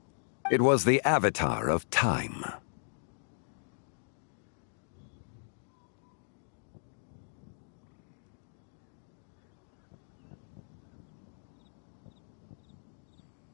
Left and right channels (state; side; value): silent; right; digital silence